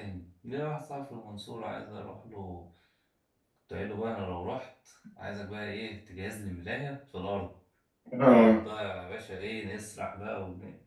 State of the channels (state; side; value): identical; both; correlation 1.00